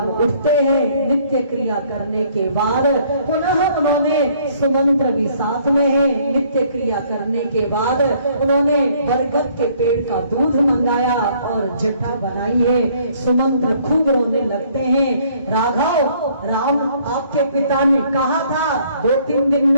उठते हैं, नित्य क्रिया करने के बाद पुनः उन्होंने सुमंत्र भी साथ में है, नित्य क्रिया करने के बाद उन्होंने बरगद के पेड़ का दूध मंगाया और जटा बनाई है। सुमंत्र खूब रोने लगते हैं, राघव राम आपके पिता ने कहा था 2-3 दिन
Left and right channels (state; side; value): inverted; both; correlation -0.62